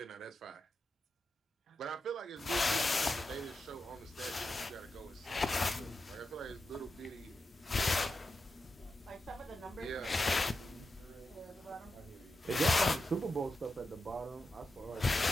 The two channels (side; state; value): both; normal; correlation 0.89